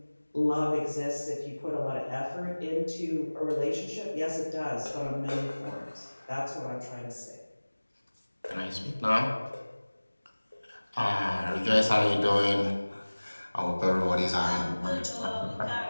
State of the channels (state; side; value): inverted; both; correlation -1.00